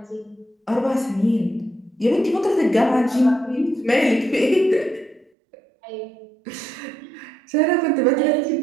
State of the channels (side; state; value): left; drops out; at 5.3 s